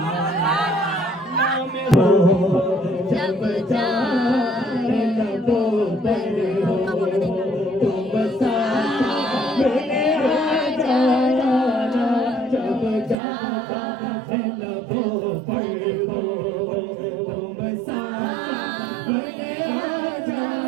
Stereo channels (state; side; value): drops out; left; at 13.2 s